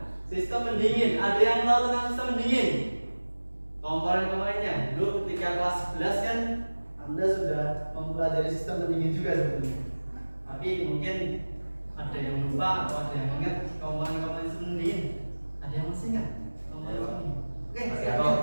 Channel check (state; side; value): inverted; both; correlation -1.00